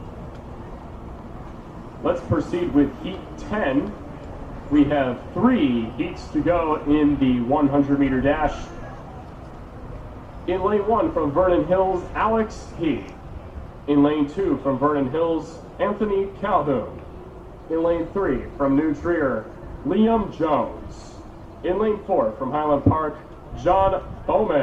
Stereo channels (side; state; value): both; identical; correlation 1.00